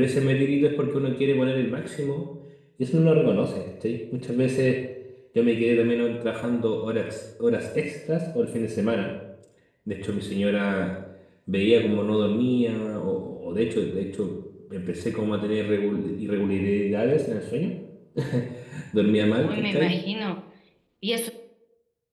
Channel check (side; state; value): both; identical; correlation 1.00